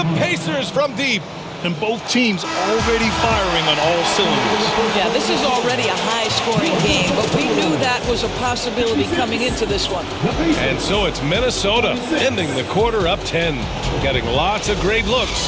Pacers from deep. And both teams already firing on all cylinders. Yeah, this is already a high-scoring game, but we knew that was a possibility coming into this one. And so it's Minnesota ending the quarter up 10. Getting lots of great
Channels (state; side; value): identical; both; correlation 1.00